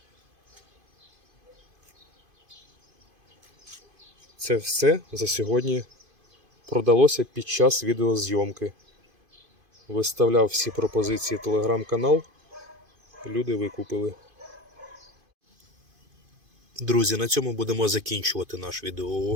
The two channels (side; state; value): left; late; 2.5 ms